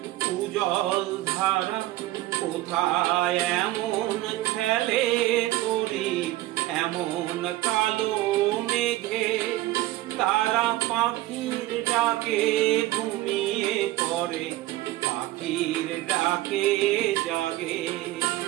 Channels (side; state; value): left; quieter; 16.7 dB